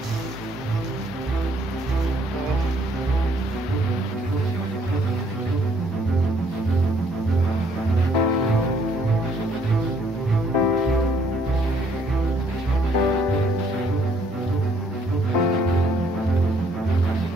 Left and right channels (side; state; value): both; normal; correlation 0.65